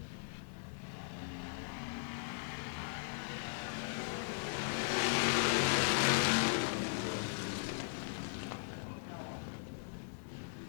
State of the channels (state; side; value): silent; right; 52 dB below the other